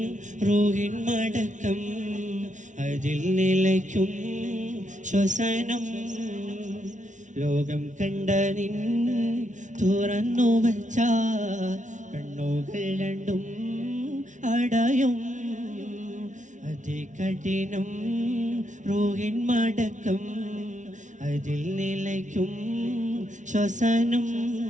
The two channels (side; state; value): left; late; 0.36 ms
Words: റൂഹിൻ മടക്കം അതിൽ നിലയ്ക്കും ശ്വസനം ലോകം കണ്ട നിൻ തുറന്നു വച്ച കണ്ണുകൾ രണ്ടും അടയും അതികഠിനം റൂഹിൻ മടക്കം അതിൽ നിലയ്ക്കും ശ്വസനം